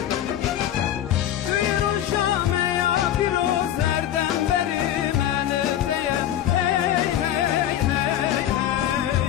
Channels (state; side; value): quieter; right; 11.4 dB